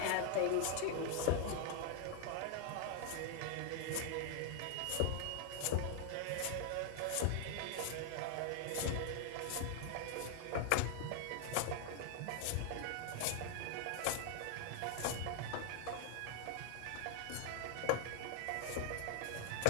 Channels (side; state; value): both; different; correlation 0.00